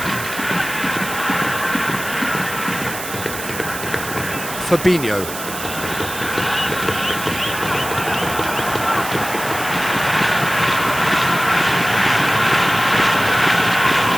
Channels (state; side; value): noise; right; hiss, 9 dB below the sound